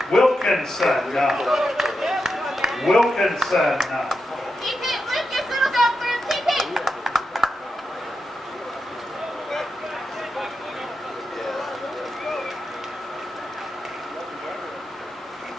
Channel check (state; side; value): normal; both; correlation 0.87